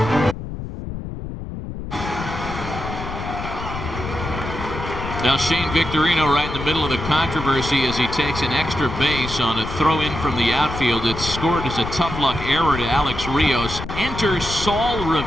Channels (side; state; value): left; noise; rumble, 8 dB below the sound